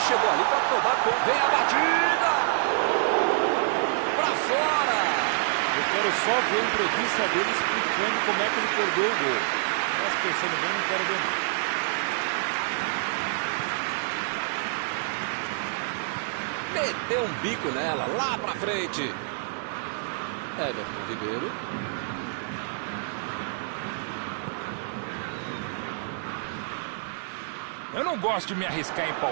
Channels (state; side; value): silent; left; 60 dB below the other